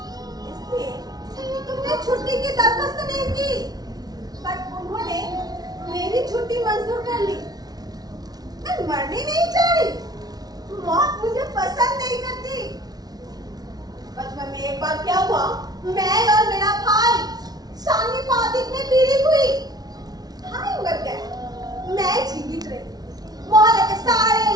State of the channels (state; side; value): late; left; 0.19 ms